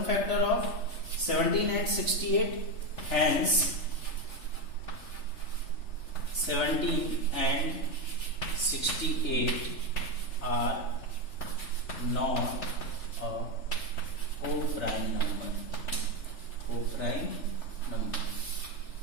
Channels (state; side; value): late; right; 3.4 ms